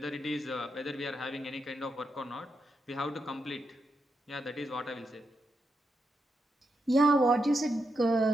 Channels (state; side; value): normal; both; correlation 0.84